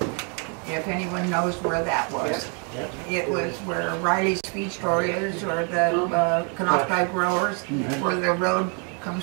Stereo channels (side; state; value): left; quieter; 38.0 dB